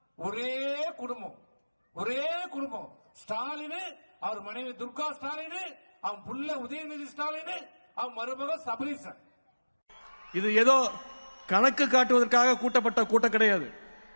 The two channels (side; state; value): both; inverted; correlation -1.00